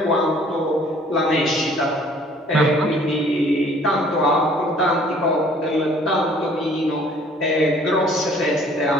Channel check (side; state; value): both; normal; correlation 0.56